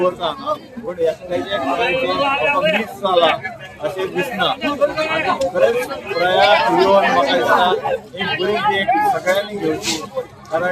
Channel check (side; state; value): both; identical; correlation 1.00